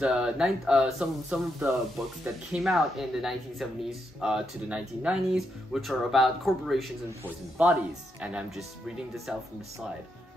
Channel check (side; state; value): both; normal; correlation 0.81